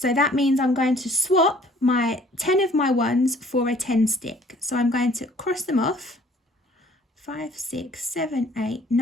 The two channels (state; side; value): normal; both; correlation 0.56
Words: that means I'm going to swap my 10 of my ones for a 10 stick. So I'm going to cross them off. 5, 6, 7, 8,